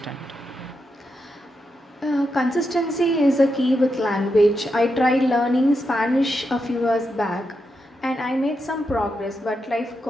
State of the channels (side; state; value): both; normal; correlation 0.85